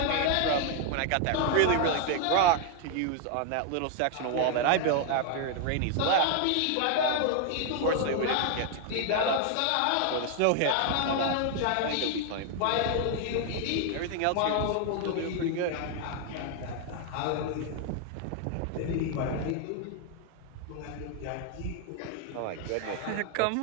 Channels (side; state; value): both; different; correlation 0.00